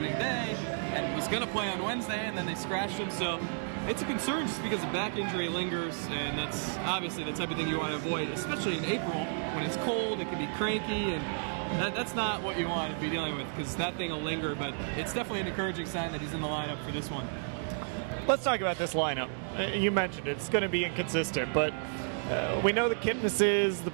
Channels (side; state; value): left; silent; digital silence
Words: day and was going to play on Wednesday, and then they scratched him. So it's a concern just because the back injury lingers, and that's obviously the type of thing you want to avoid, especially in April when it's cold, it can be cranky, and that's not what you want to be dealing with, because that thing will linger. But it's definitely an encouraging sign that he's in the lineup for this one. Let's talk about this lineup. You mentioned it's going to be inconsistent, but we know the Kipnis's, the